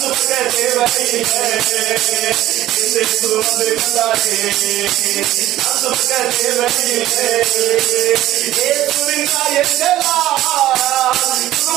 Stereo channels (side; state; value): left; quieter; 14.5 dB